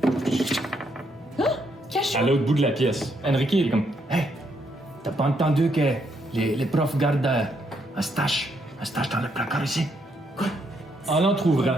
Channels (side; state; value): both; normal; correlation 0.75